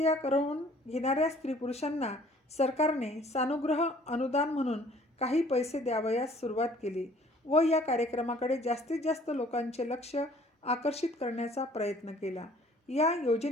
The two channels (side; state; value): both; normal; correlation 0.55